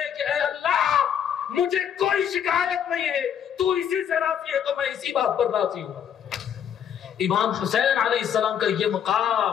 کہ اے اللہ مجھے کوئی شکایت نہیں ہے، تو اسی سے راضی ہے تو میں اسی بات پر راضی ہوں۔ امام حسین علیہ السلام کا یہ مقام،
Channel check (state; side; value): quieter; right; 8.7 dB